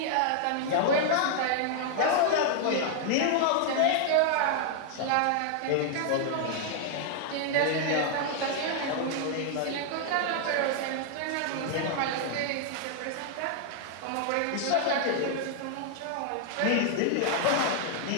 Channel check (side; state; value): both; different; correlation 0.00